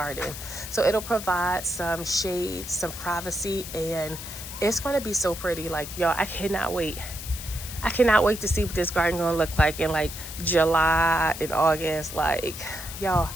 so it'll provide some shade, some privacy, and it's going to be so pretty. Like, y'all, I cannot wait to see what this garden gonna look like in like July and August. Like, y'all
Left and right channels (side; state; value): left; noise; hiss, 10 dB below the sound